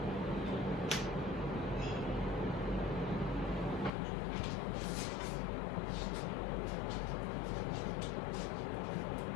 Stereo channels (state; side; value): drops out; right; at 3.9 s